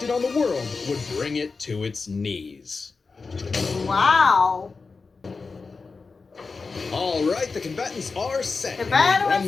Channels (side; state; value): right; quieter; 4.4 dB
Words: on the world would bring it to its knees. Wow. All right, the combatants are set. The battle Run